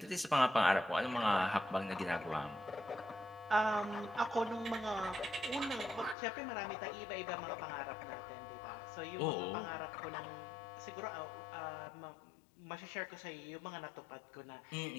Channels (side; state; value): right; drops out; at 6.2 s